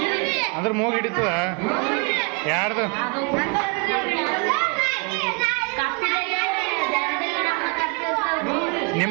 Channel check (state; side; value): quieter; left; 33.8 dB